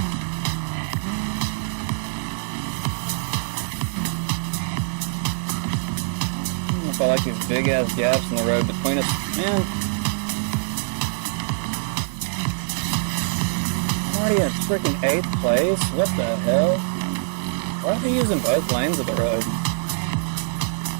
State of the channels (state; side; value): silent; left; digital silence